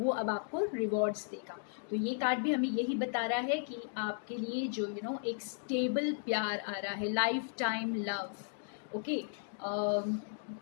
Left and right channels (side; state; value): right; silent; digital silence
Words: अब आपको रिवॉर्ड्स देगा। तो ये कार्ड भी हमें यही बता रहा है कि आपके लिए जो एक स्टेबल प्यार आ रहा है, लाइफ टाइम लव। ओके,